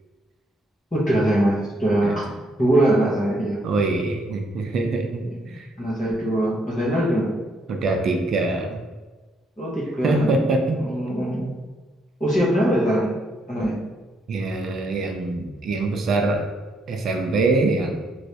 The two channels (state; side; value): normal; both; correlation 0.73